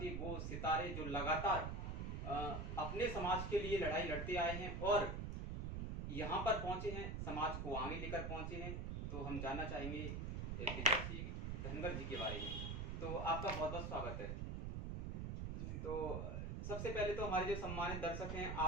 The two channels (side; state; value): right; noise; rumble, 3 dB below the sound